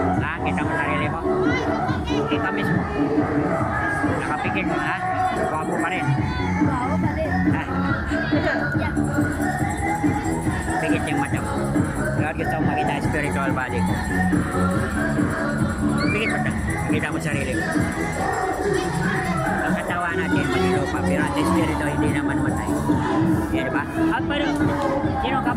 Kita mo sarili mo? Ikaw mismo. Nakapikit mo, ha? Wapo pa rin. Wow, palit. Pigit yung mata mo. Lord, gusto mo makita spiritual body ko. Pigit mo na. Makita mo sarili mo. Ang katawan natin, manilupa, pero ang espiritu hindi naman matay. Yan, diba? At pero, sino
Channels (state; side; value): identical; both; correlation 1.00